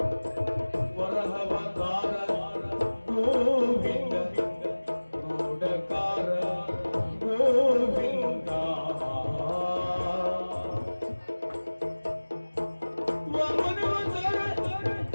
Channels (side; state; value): both; inverted; correlation -1.00